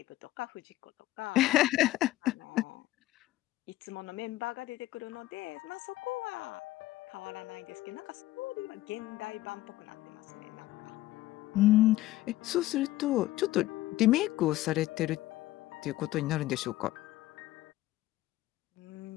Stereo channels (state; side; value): quieter; right; 16.3 dB